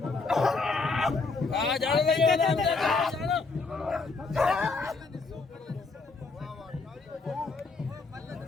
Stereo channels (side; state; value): right; quieter; 4.1 dB